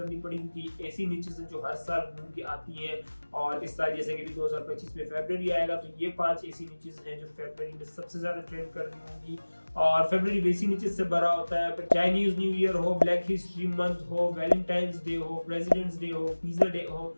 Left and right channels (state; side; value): inverted; both; correlation -1.00